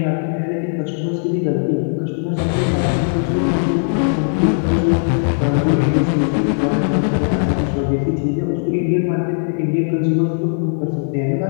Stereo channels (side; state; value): right; silent; digital silence